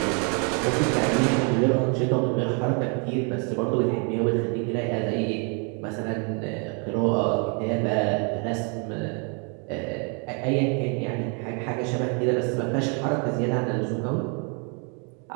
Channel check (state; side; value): quieter; left; 36.7 dB